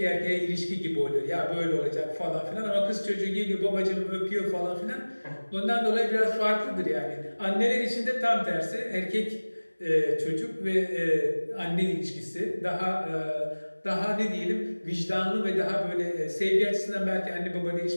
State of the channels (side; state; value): both; inverted; correlation -1.00